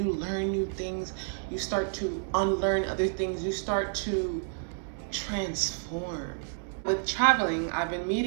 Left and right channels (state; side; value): silent; left; digital silence